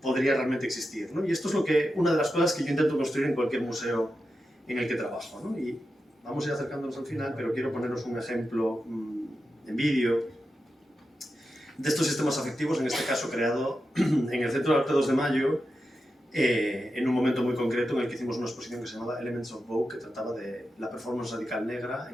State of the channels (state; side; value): normal; both; correlation 0.89